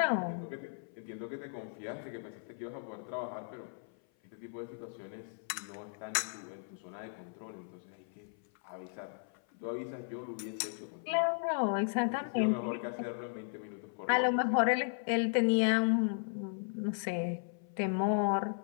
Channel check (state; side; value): silent; right; 54 dB below the other